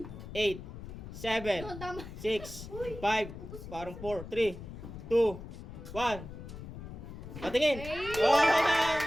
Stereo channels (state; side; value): noise; left; rumble, 11 dB below the sound